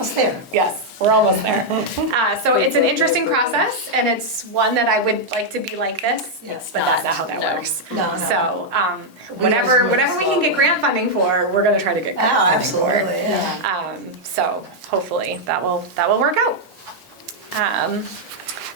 there. Yes, we're almost there. So it's an interesting process, and it's one that I would like to be like this, Yes. but that's not how that No. works. No, no. So, We always whatever move we can get grant funding for, we're gonna try to get Oh, grant funding for. absolutely, yeah. So hopefully that will work out.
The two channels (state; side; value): normal; both; correlation -0.03